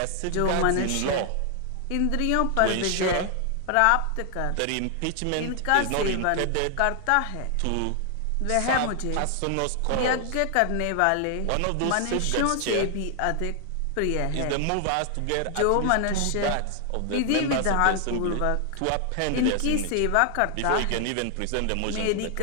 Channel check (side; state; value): both; different; correlation 0.00